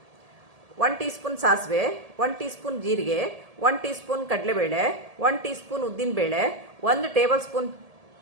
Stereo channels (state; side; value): late; left; 1.7 ms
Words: 1 ಟೀ ಸ್ಪೂನ್ ಸಾಸಿವೆ, 1 ಟೀ ಸ್ಪೂನ್ ಜೀರಿಗೆ, 1 ಟೀ ಸ್ಪೂನ್ ಕಡಲೆಬೇಳೆ, 1 ಟೀ ಸ್ಪೂನ್ ಉದ್ದಿನಬೇಳೆ, 1 ಟೇಬಲ್ ಸ್ಪೂನ್